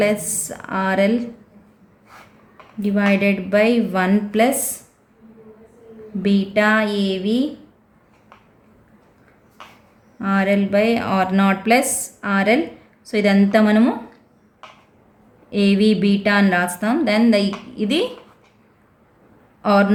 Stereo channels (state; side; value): identical; both; correlation 1.00